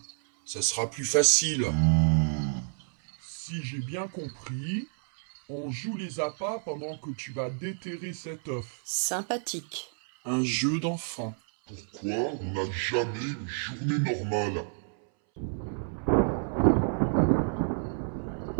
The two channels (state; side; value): silent; left; 58 dB below the other